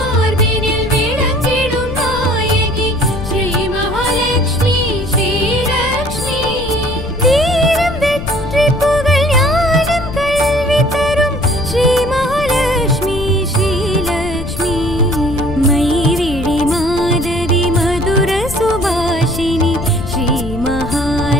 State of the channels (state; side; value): noise; left; rumble, 8 dB below the sound